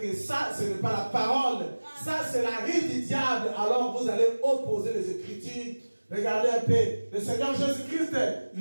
ça, ce n'est pas la parole. Ça, c'est la rise du diable. Alors, vous allez opposer les Écritures. Regardez un peu. Le Seigneur Jésus-Christ,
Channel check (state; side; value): inverted; both; correlation -1.00